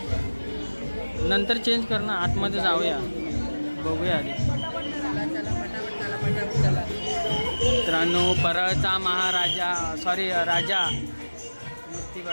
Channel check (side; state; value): both; inverted; correlation -1.00